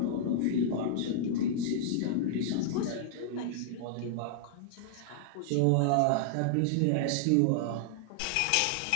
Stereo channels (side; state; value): both; different; correlation -0.01